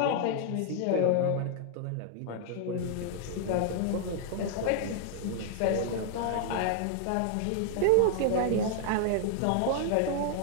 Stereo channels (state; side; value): different; both; correlation 0.00